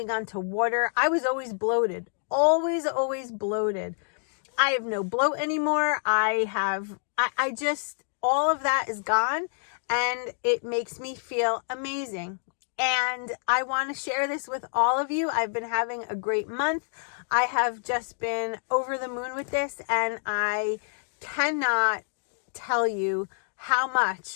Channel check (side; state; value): right; silent; digital silence